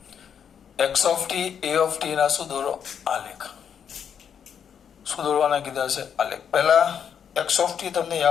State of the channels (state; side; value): quieter; right; 7.9 dB